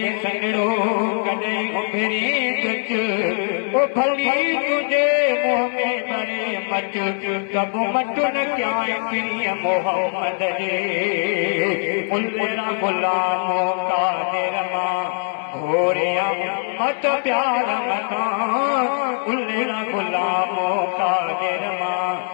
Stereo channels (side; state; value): right; silent; digital silence